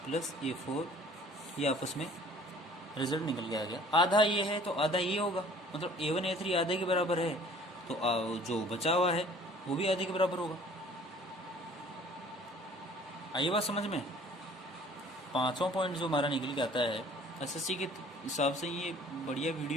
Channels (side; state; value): both; normal; correlation 0.52